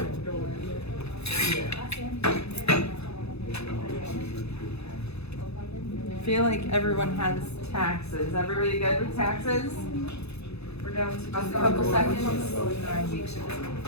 I feel like everyone has taxes. Everybody good with taxes? We're down to just a couple seconds.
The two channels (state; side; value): late; right; 0.79 ms